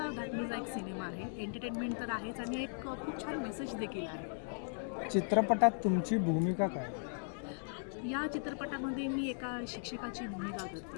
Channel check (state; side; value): silent; right; digital silence